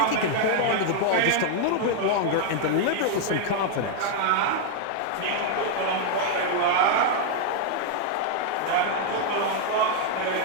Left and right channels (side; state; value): both; different; correlation 0.00